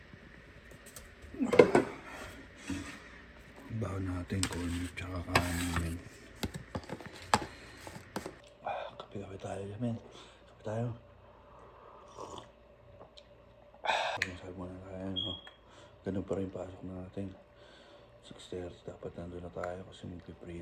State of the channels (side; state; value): both; identical; correlation 1.00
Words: Baon natin, corn beef tsaka kanin, men. Kape tayo, men. Kape tayo. Masabi mo na tayo, no? Ganun pa rin pasok natin. 6:30 dapat nandun na tayo kasi